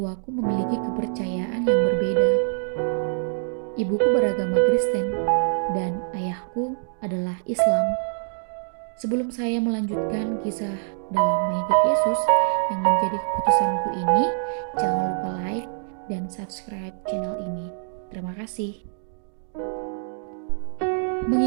memiliki kepercayaan yang berbeda. Ibuku beragama Kristen dan ayahku adalah Islam. Sebelum saya melanjutkan kisah dalam mengikut Yesus yang menjadi keputusanku ini, jangan lupa like dan subscribe channel ini. Terima kasih.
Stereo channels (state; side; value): silent; left; digital silence